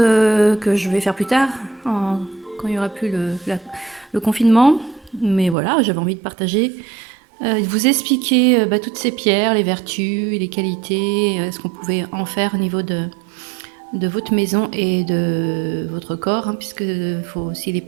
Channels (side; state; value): left; drops out; at 5.6 s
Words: je vais faire plus tard, quand il n'y aura plus le confinement. Mais voilà, j'avais envie de partager, de vous expliquer toutes ces pierres, les vertus, les qualités, ce qu'on pouvait en faire au niveau de votre maison et de votre corps, hein, puisqu'il faut aussi les